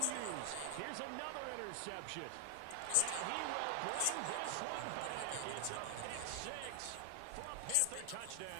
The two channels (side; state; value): both; different; correlation 0.00